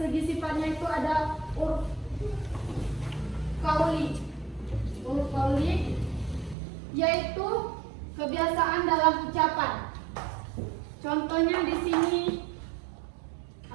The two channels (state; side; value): drops out; left; at 6.6 s